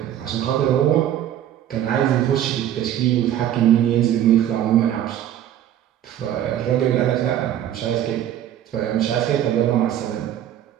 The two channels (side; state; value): left; quieter; 11.2 dB